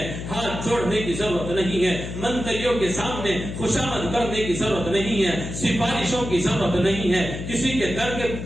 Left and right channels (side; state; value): left; noise; hum, 7 dB below the sound